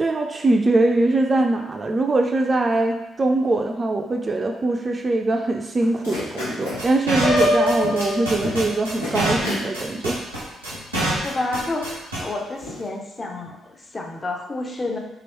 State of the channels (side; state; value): both; normal; correlation 0.84